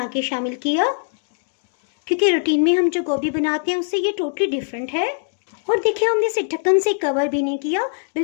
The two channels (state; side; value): silent; right; digital silence